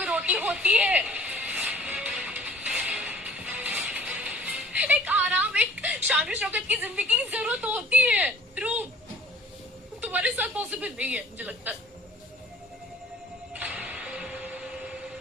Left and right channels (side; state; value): both; normal; correlation 0.49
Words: रोटी होती है। एक आराम, एक शान शौकत की जिंदगी की जरूरत होती है ध्रुव। तुम्हारे साथ पॉसिबल नहीं है मुझे लगता है।